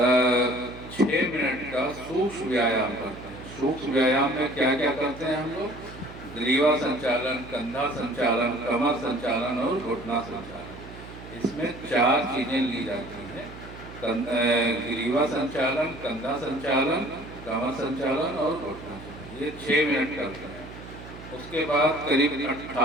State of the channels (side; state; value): right; noise; hum, 15 dB below the sound